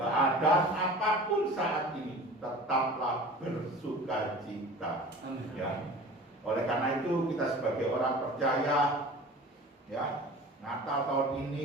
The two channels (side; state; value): both; normal; correlation 0.40